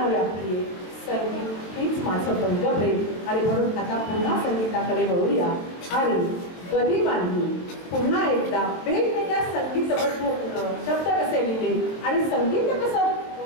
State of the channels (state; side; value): late; right; 22 ms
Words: व्यापली आहे संगीत हीच माझं पंगप्रेम आणि म्हणून आता पुन्हा संगीताकडे वळूया आणि गदी मांडली पुन्हा एकदा वेगवेगळ्या संगीतबद्ध शब्द कसे लिहिले आणि संगीत कसं